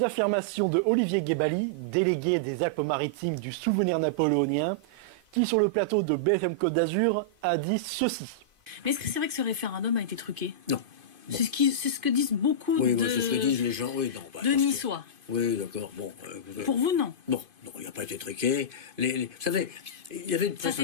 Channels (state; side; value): late; left; 2.5 ms